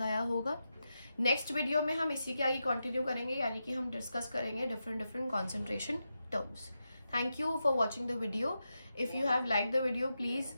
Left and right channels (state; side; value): inverted; both; correlation -0.88